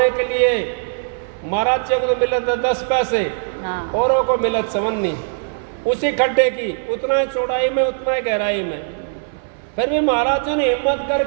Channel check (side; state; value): left; silent; 58 dB below the other